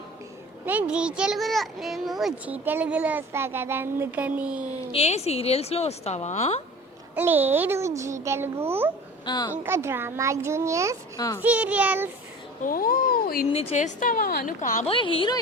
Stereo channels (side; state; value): both; normal; correlation 0.40